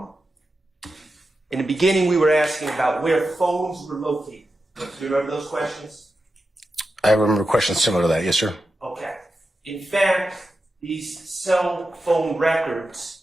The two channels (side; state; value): both; normal; correlation 0.90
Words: the beginning, we were asking about where phones were located. Do you remember those questions? I remember questions similar to that. Yes, sir. Okay. In fact, these cell phone records,